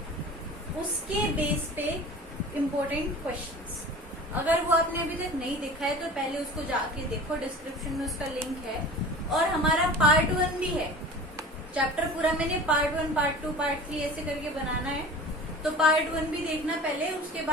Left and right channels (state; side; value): normal; both; correlation 0.38